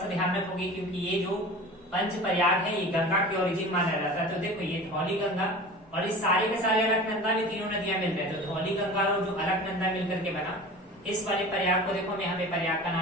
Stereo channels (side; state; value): both; normal; correlation 0.37